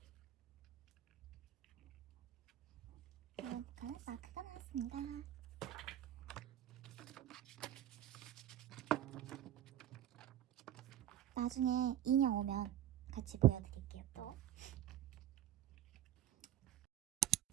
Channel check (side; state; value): left; quieter; 11.8 dB